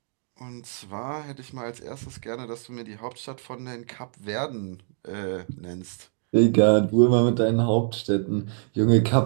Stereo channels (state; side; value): silent; left; 62 dB below the other